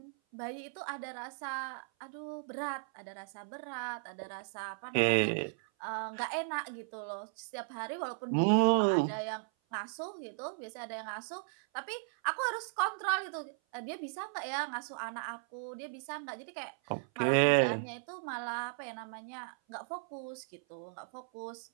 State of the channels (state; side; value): silent; left; 54 dB below the other